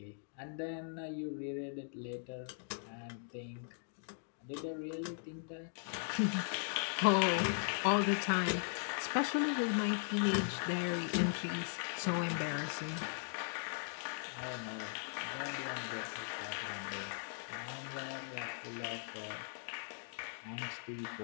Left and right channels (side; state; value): right; silent; digital silence